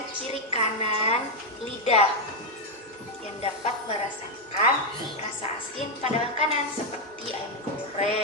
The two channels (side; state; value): both; normal; correlation 0.03